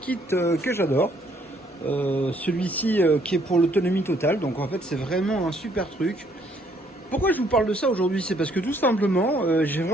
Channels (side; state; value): both; normal; correlation 0.66